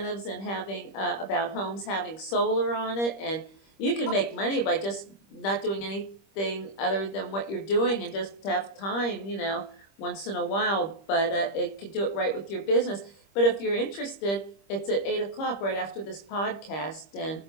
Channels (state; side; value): late; right; 25 ms